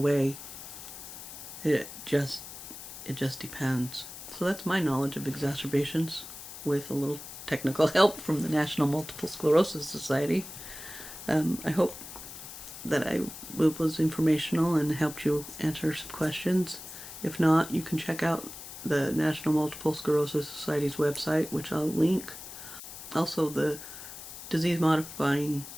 It just depends. So that's my knowledge of exacerbations, with a little technical help from the National Multiple Sclerosis Society. I hope that I was informational and helped you answer some questions. If not, you can check out the National Multiple Sclerosis Society's website, which I'll link. Also, the disease-modifying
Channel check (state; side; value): noise; left; hiss, 12 dB below the sound